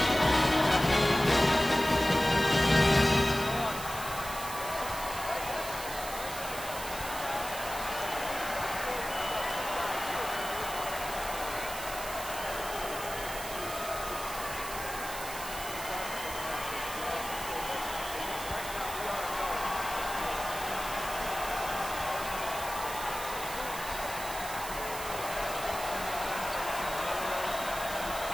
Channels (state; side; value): noise; right; hiss, 9 dB below the sound